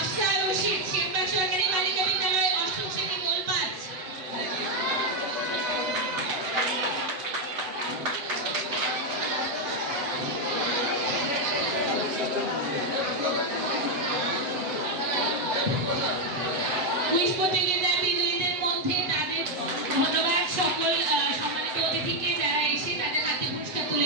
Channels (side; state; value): left; late; 7.9 ms